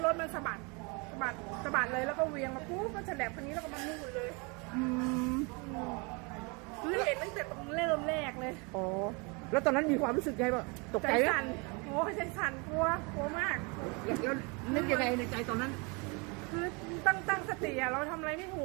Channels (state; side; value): quieter; left; 30.7 dB